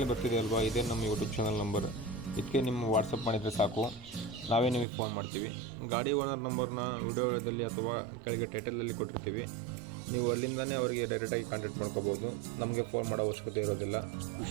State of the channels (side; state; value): left; drops out; at 4.9 s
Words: ಬರ್ತಿದೆ ಅಲ್ವಾ, ಇದೇ ನಮ್ಮ ಯೂಟ್ಯೂಬ್ ಚಾನಲ್ ನಂಬರ್. ಇದಕ್ಕೆ ನಿಮ್ಮ ವಾಟ್ಸಪ್ ಮಾಡಿದರೆ ಸಾಕು, ನಾವೇ ನಿಮಗೆ ಫೋನ್ ಮಾಡ್ತೀವಿ. ಗಾಡಿ ಓನರ್ ನಂಬರ್ನ ವಿಡಿಯೋದಲ್ಲಿ ಅಥವಾ ಕೆಳಗೆ ಟೈಟಲಲ್ಲಿ ಕೊಟ್ಟಿರ್ತೀವಿ. ನೀವು ಅಲ್ಲಿಂದನೇ ಅವರಿಗೆ ಡೈರೆಕ್ಟಾಗಿ ಕಾಂಟ್ಯಾಕ್ಟ್ ಮಾಡ್ಕೋಬೋದು. ನಮಗೆ ಫೋನ್ ಮಾಡೋ ಅವಶ್ಯಕತೆ ಇರೋದಿಲ್ಲ.